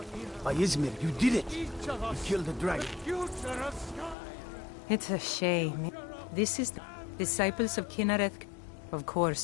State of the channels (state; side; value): drops out; right; at 4.2 s